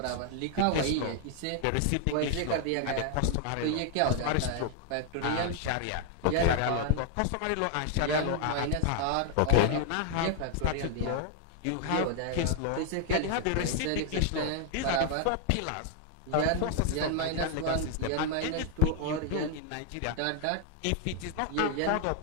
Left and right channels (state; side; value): different; both; correlation 0.00